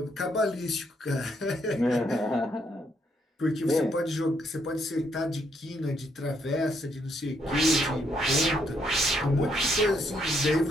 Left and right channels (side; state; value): both; normal; correlation 0.73